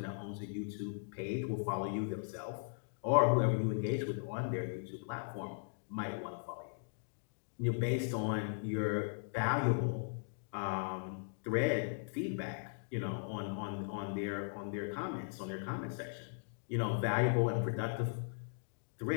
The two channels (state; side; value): silent; right; digital silence